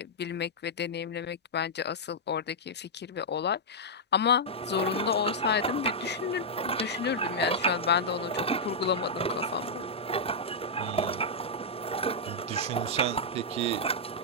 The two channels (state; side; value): normal; both; correlation -0.07